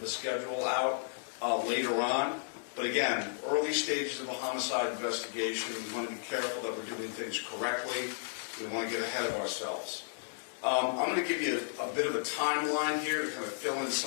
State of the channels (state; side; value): silent; right; digital silence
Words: a schedule out later on. But again, early stages of a homicide investigation, we want to be careful that we're doing things correctly. We want to get ahead of ourselves. I'm going to give you a bit of a timeline here to kind of fill in